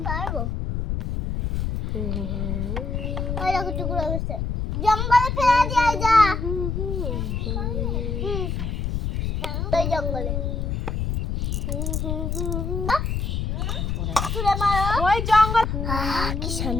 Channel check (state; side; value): noise; left; rumble, 1 dB below the sound